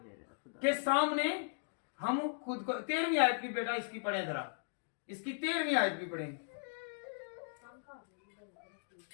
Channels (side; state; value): right; silent; digital silence